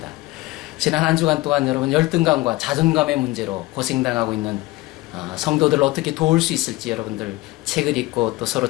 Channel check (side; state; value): right; quieter; 19.9 dB